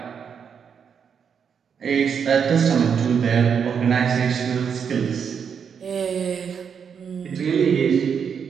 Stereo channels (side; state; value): left; quieter; 7.0 dB